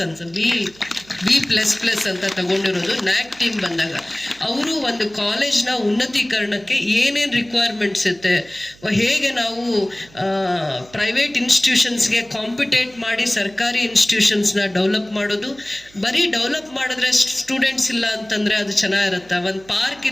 ಅಂತ ತಗೊಂಡಿರೋದು ನ್ಯಾಕ್ ಟೀಮ್ ಬಂದಾಗ. ಅವರು ಒಂದು ಕಾಲೇಜ್ನ ಉನ್ನತೀಕರಣಕ್ಕೆ ಏನೇನು ರಿಕ್ವೈರ್ಮೆಂಟ್ಸ್ ಇರುತ್ತೆ, ಹೇಗೆ ನಾವು ಪ್ರೈವೇಟ್ ಇನ್ಸ್ಟಿಟ್ಯೂಷನ್ಸ್ಗೆ ಕಾಂಪಿಟೇಟ್ ಮಾಡಿ ಸರ್ಕಾರಿ ಇನ್ಸ್ಟಿಟ್ಯೂಷನ್ಸ್ನ ಡೆವಲಪ್ ಮಾಡೋದು. ಬರೀ ಡೆವಲಪ್ ಮಾಡಿದ್ರೆ ಸ್ಟೂಡೆಂಟ್ಸ್ ಇಲ್ಲ ಅಂತಂದರೆ ಅದು ಚೆನ್ನಾಗಿರುತ್ತೆ. ಒಂದು ಪಾರ್ಕ್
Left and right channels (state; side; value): noise; right; hum, 25 dB below the sound